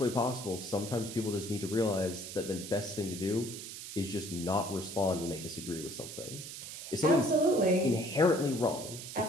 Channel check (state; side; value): noise; right; hiss, 10 dB below the sound